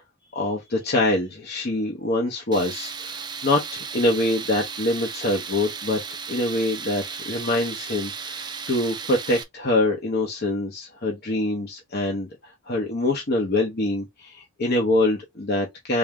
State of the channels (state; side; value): normal; both; correlation 0.33